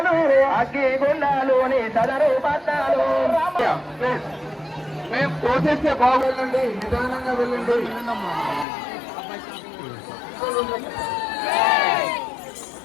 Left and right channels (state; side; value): drops out; right; at 8.7 s